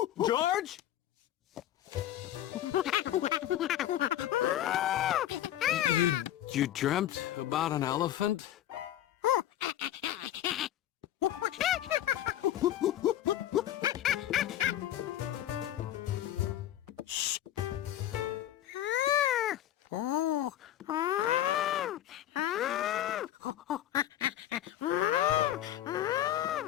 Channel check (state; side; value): quieter; right; 12.4 dB